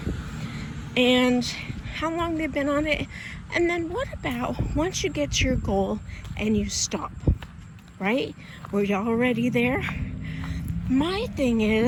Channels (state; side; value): identical; both; correlation 1.00